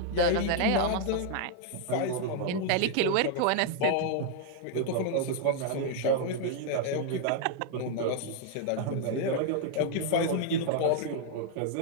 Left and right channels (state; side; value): different; both; correlation 0.00